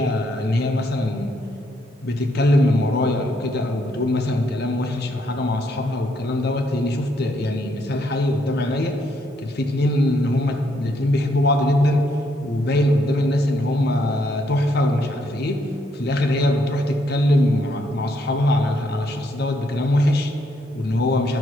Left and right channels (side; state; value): both; normal; correlation 0.73